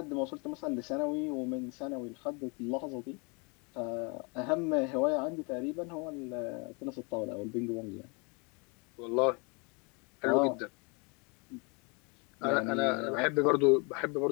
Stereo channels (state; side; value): quieter; right; 32.0 dB